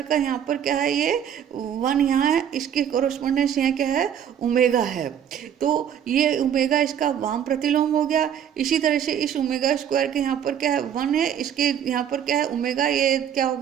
का यहाँ पर क्या है, ये 1 यहाँ है, इसके कोरोस्पोंडेंस यहाँ क्या है, ओमेगा है। तो ये ओमेगा इसका वाम प्रतिलोम हो गया। इसी तरह से इस ओमेगा स्क्वायर के यहाँ पर क्या है, 1 है, इसके यहाँ पर क्या है ओमेगा, ये क्या हो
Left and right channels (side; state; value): left; quieter; 9.1 dB